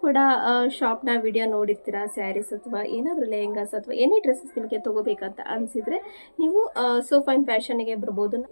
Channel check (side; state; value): both; inverted; correlation -1.00